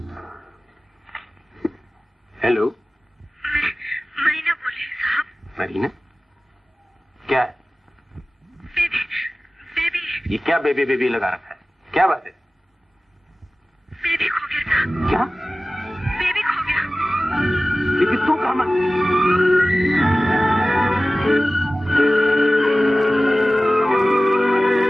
हेलो, मरीना बोले साहब। मरीना? क्या है? बेबी ये क्या बेबी बेबी लगा रखा है? क्या बात है? बेबी खो गया साहब। क्या? बेबी खो गया। लेकिन तू कहाँ?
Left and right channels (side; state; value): both; normal; correlation 0.96